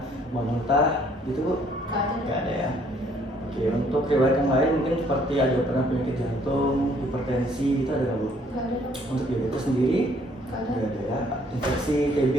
muntah gitu Bu? Nggak ada ya? Oke, untuk riwayat yang lain mungkin seperti ada pernah penyakit jantung, hipertensi gitu ada nggak Bu? Nggak ada. Untuk diabetes sendiri? Nggak ada. Nggak ada ya. Infeksi TB?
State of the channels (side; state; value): both; normal; correlation 0.63